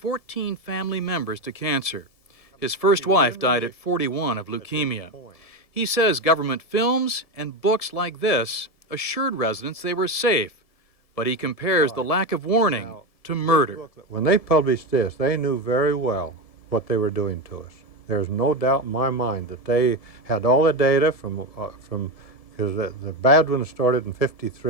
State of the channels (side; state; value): right; late; 1.7 ms